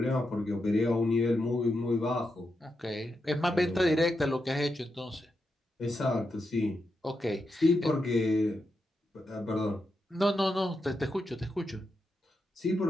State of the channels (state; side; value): normal; both; correlation 0.86